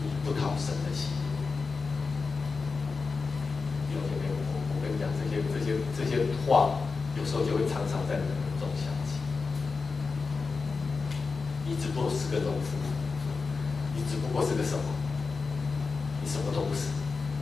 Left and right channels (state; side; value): quieter; right; 4.6 dB